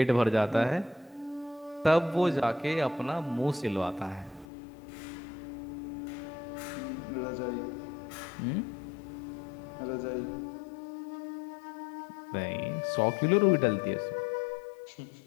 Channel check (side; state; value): right; drops out; at 4.5 s